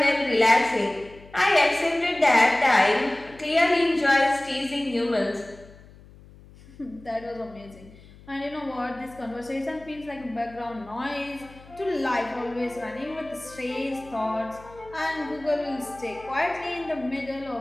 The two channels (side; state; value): left; noise; hum, 22 dB below the sound